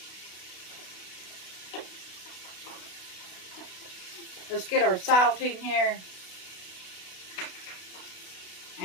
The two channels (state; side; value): late; right; 32 ms